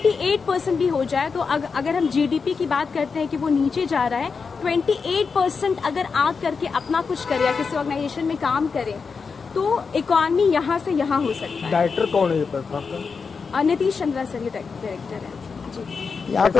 भी हो जाए तो अगर हम GDP की बात करते हैं कि वो नीचे जा रहा है, 28% अगर आग करके अपना कुछ करे या किसी ऑर्गेनाइजेशन में काम करे तो इकॉनमी यहाँ से यहाँ हो सकता है। डायरेक्टर कौन है ये प्लेटफॉर्म का? नीतीश चंद्रा सर ये डायरेक्टर है। जी। यहाँ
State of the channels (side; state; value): right; quieter; 5.2 dB